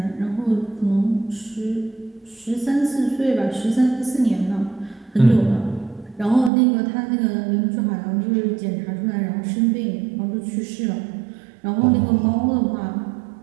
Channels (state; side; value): drops out; left; at 6.5 s